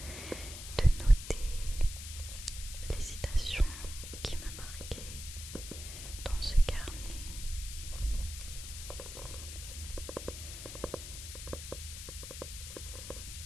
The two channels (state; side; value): noise; left; hiss, 9 dB below the sound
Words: de noter les citations qui me marquaient dans ce carnet.